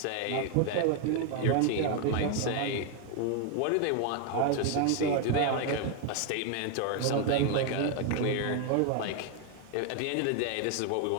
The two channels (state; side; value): different; both; correlation 0.01